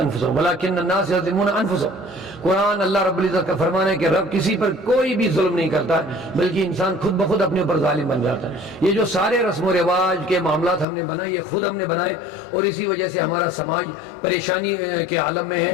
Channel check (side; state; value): right; drops out; at 10.9 s